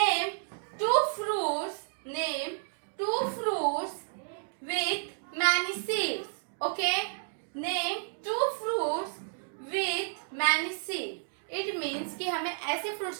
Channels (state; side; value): silent; left; digital silence